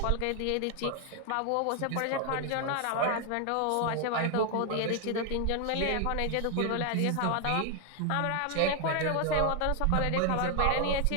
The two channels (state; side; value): different; both; correlation 0.00